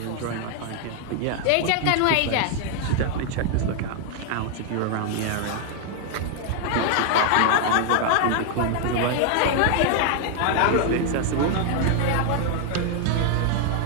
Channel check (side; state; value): both; different; correlation 0.00